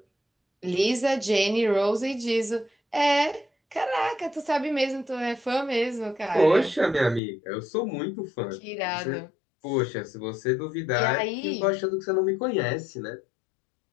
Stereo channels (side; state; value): right; drops out; at 7.2 s